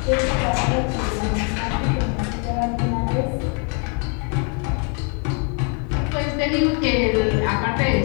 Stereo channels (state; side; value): quieter; right; 36.5 dB